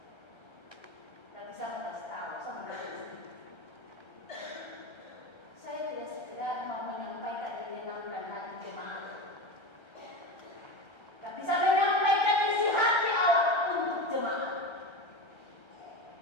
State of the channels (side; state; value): right; late; 1.3 ms